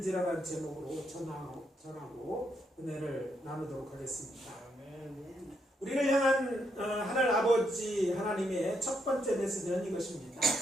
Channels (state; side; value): normal; both; correlation 0.78